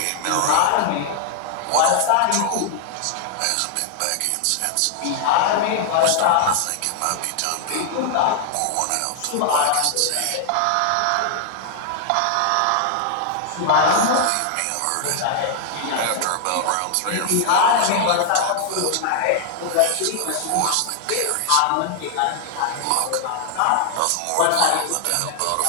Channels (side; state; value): both; different; correlation 0.00